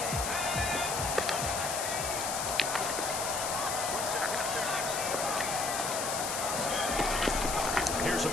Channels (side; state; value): left; noise; hiss, 3 dB below the sound